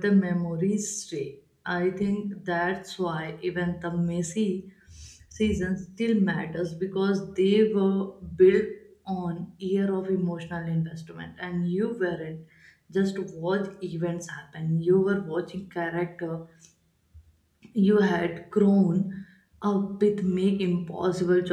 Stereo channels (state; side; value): identical; both; correlation 1.00